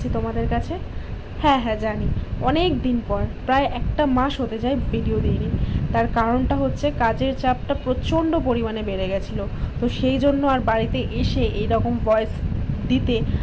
তোমাদের কাছে। হ্যাঁ জানি অনেক দিন পর, প্রায় একটা মাস হতে যায় ভিডিও দিইনি। তার কারণটা হচ্ছে কাজের চাপটা প্রচণ্ড পরিমাণে বেড়ে গেছিলো, তো সেই জন্য আর বাড়িতে এসে এইরকম ভয়েস দিতে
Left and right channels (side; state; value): both; identical; correlation 1.00